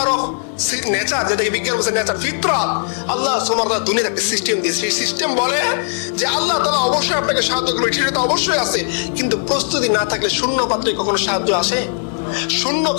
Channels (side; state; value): right; silent; 67 dB below the other